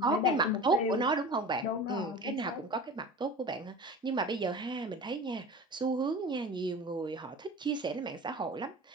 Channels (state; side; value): normal; both; correlation 0.35